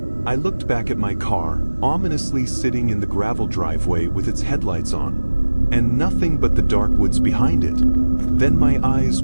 I looked back at my car, ominously sitting in the gravel driveway with its headlights on, and nothing but the dark woods behind it. Then my eyes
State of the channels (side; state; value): both; inverted; correlation -1.00